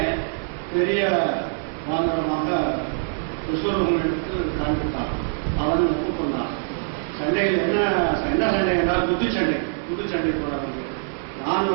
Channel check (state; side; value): silent; left; digital silence